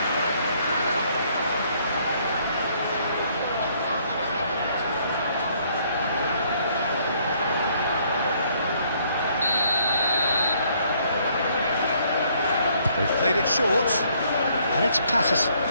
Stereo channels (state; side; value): inverted; both; correlation -0.66